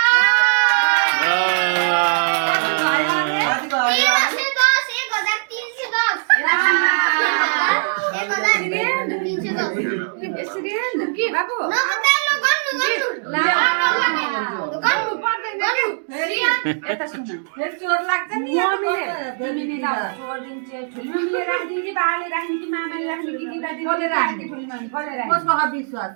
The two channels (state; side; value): silent; left; digital silence